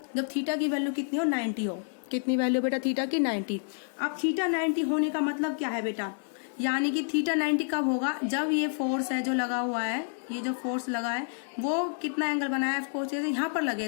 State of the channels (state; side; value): silent; right; digital silence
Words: जब थीटा की वैल्यू कितनी हो, 90 हो। कितनी वैल्यू बेटा थीटा की, 90। अब थीटा 90 होने का मतलब क्या है बेटा, यानी कि थीटा 90 कब होगा, जब ये फोर्स है जो लगा हुआ है, ये जो फोर्स लगा है वो कितना एंगल बनाया है, फोर्स यहाँ पर